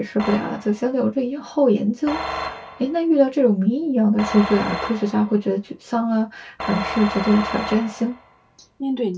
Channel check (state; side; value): identical; both; correlation 1.00